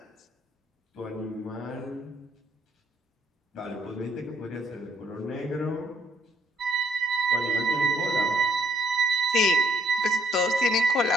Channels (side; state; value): both; normal; correlation 0.70